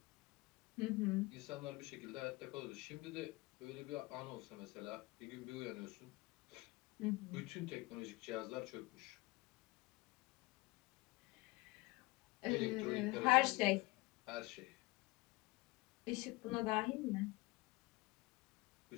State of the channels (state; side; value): quieter; right; 22.5 dB